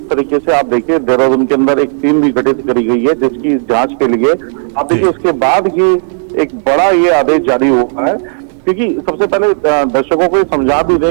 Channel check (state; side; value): silent; left; 66 dB below the other